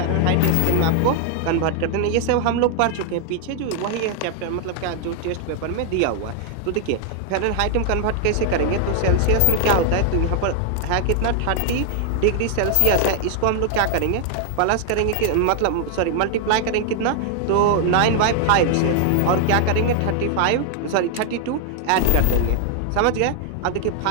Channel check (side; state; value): both; different; correlation 0.00